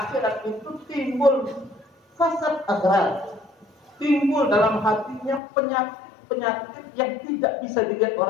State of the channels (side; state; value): right; drops out; at 5.4 s